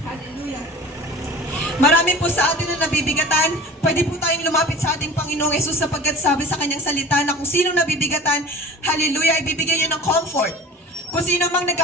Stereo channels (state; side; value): normal; both; correlation 0.40